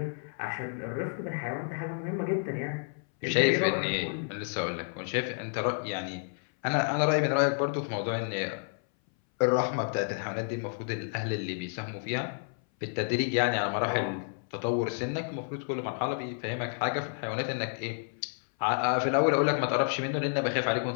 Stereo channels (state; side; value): silent; right; 58 dB below the other